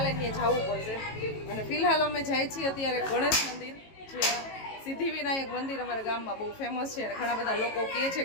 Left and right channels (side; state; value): right; late; 18 ms